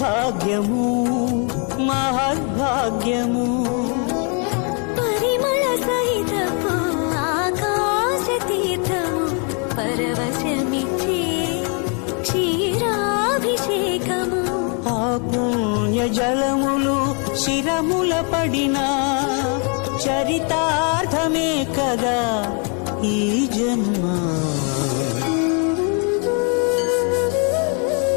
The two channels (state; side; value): quieter; right; 38.1 dB